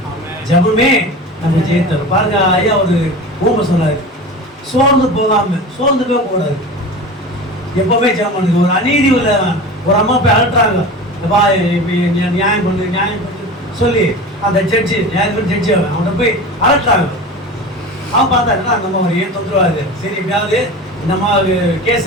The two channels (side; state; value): both; normal; correlation 0.32